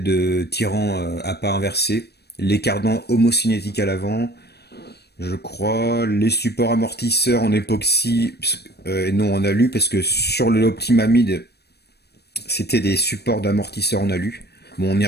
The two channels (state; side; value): late; right; 0.47 ms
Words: tirant à pas inversé, les cardans homocinétiques à l'avant, je crois, les supports amortisseurs en époxy et non en alu, parce que sur le Optima Mid, c'était des supports d'amortisseurs en alu. Bon, on y